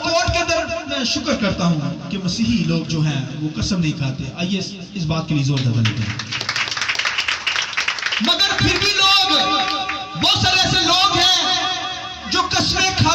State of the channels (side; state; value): both; identical; correlation 1.00